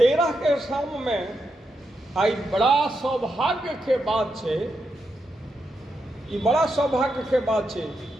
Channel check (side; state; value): both; normal; correlation 0.84